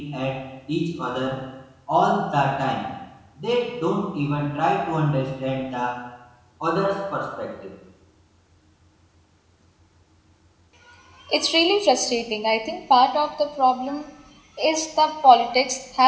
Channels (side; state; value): both; identical; correlation 1.00